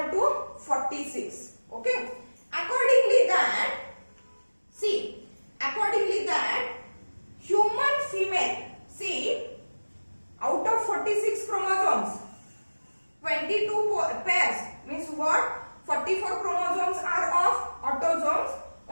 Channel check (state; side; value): inverted; both; correlation -1.00